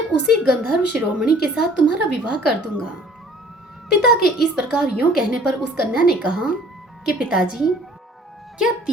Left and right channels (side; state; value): both; normal; correlation 0.53